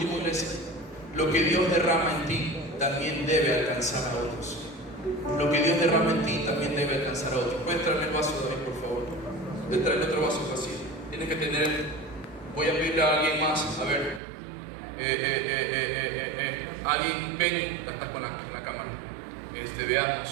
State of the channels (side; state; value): left; drops out; at 14.2 s